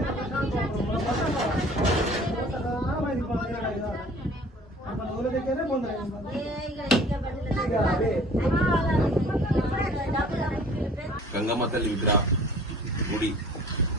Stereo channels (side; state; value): both; normal; correlation 0.50